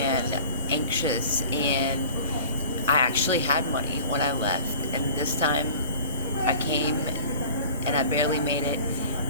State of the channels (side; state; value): both; inverted; correlation -0.43